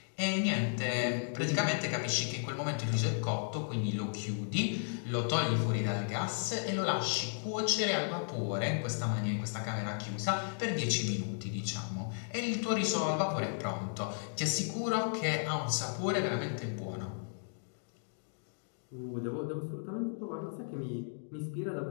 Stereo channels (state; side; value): silent; right; digital silence